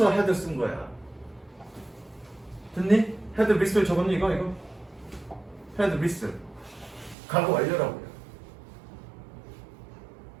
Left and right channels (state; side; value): drops out; left; at 7.2 s